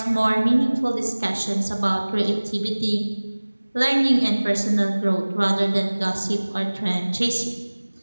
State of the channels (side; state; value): both; inverted; correlation -1.00